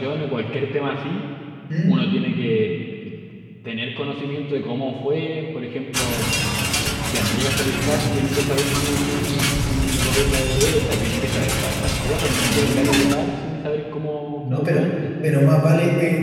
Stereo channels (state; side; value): identical; both; correlation 1.00